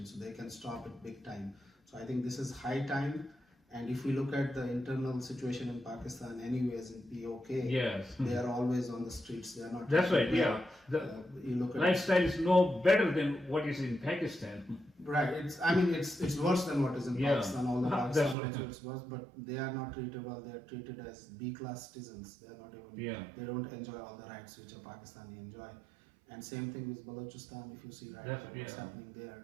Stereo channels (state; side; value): drops out; left; at 18.4 s